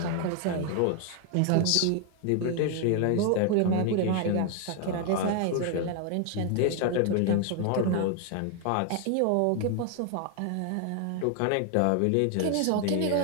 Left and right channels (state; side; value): different; both; correlation 0.00